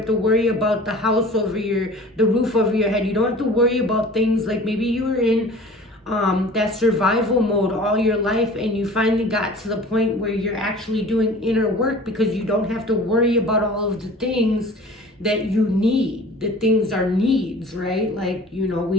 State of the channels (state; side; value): normal; both; correlation 0.43